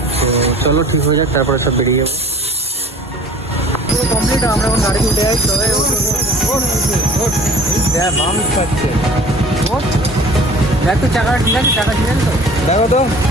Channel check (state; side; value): normal; both; correlation 0.48